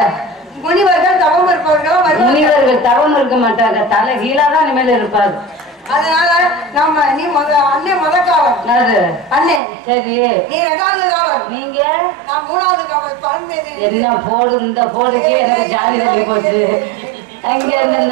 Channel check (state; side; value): drops out; left; at 9.6 s